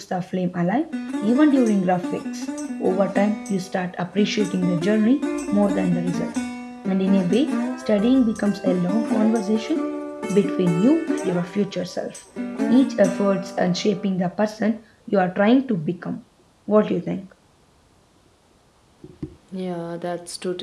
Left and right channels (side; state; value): both; identical; correlation 1.00